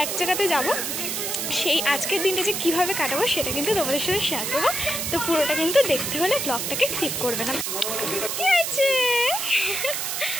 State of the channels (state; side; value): noise; right; hiss, 2 dB below the sound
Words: এক জায়গাতে যাব। সেই আজকের দিনটা যে কীভাবে কাটাবো সেটা কিন্তু তোমাদের সাথে শেয়ার করবো। তো পুরোটা কিন্তু দেখতে হলে ব্লগটাকে স্কিপ করবে না। কী আছে